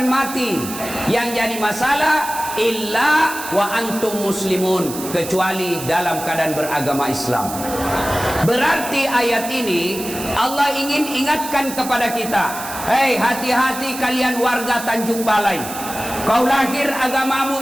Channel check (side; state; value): right; noise; hiss, 10 dB below the sound